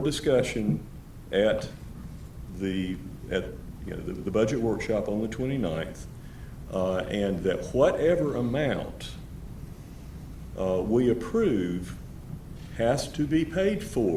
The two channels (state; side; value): identical; both; correlation 1.00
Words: discussion at the budget workshop on the 29th, and that whatever amount we approve has to be paid